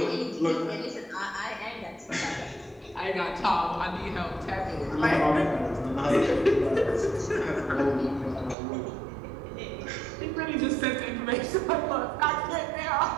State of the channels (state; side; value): drops out; left; at 8.6 s